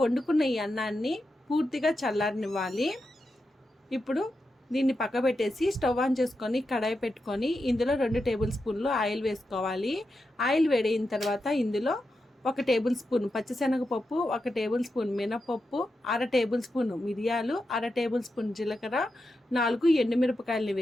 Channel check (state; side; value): normal; both; correlation 0.88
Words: వండుకున్న ఈ అన్నాన్ని పూర్తిగా చల్లారనివ్వాలి. ఇప్పుడు దీన్ని పక్క పెట్టేసి స్టవ్ ఆన్ చేసుకొని కడాయి పెట్టుకొని ఇందులో 2 టేబుల్ స్పూన్లు ఆయిల్ వేసుకోవాలి. ఆయిల్ వేడైన తర్వాత ఇందులో 1 టేబుల్ స్పూన్ పచ్చిశనగపప్పు, 1 టేబుల్ స్పూన్ మినపప్పు, 1/2 టేబుల్ స్పూన్ మిరియాలు, 1/2 టేబుల్ స్పూన్ జీలకర్ర, 4 ఎండుమిరపకాయలని